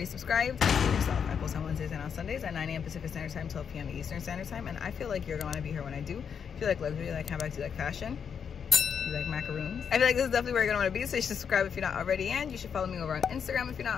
subscribed, do yourself. I post on Wednesdays and on Sundays at 9 a.m. Pacific Standard Time, 12 p.m. Eastern Standard Time, and I feel like you're gonna be here when I do. If you like luxury, you like handbags, you like fashion, you like macaroons, I feel like this is definitely where you're gonna want to be. So you should subscribe if you're not already, and you should follow me over on Instagram if you're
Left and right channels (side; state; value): right; quieter; 7.1 dB